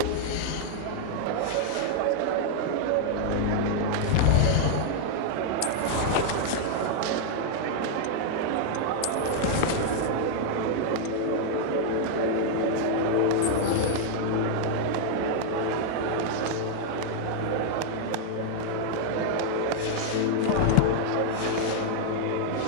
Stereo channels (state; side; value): different; both; correlation 0.00